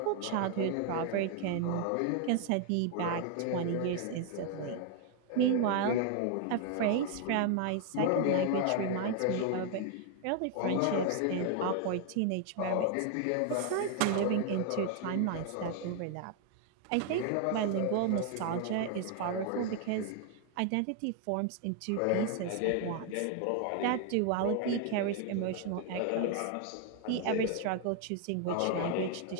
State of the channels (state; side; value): different; both; correlation 0.00